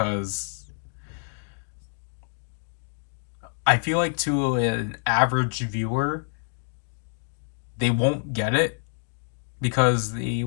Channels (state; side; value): silent; right; 60 dB below the other